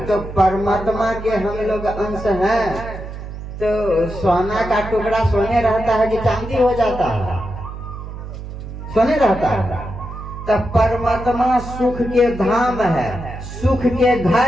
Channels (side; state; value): right; noise; hum, 10 dB below the sound